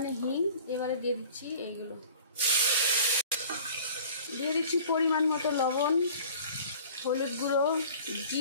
হিং। এবারে দিয়ে দিচ্ছি এইগুলো, দিয়ে দিচ্ছি পরিমাণ মতো লবণ, হলুদ গুঁড়ো,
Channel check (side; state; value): both; inverted; correlation -0.45